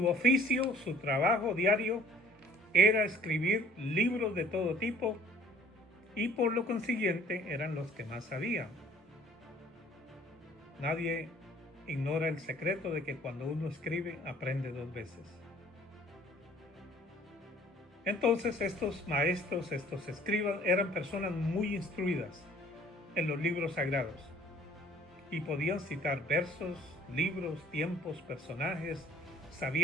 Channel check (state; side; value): normal; both; correlation 0.54